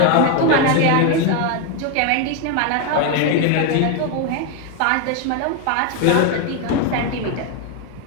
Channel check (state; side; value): different; both; correlation 0.02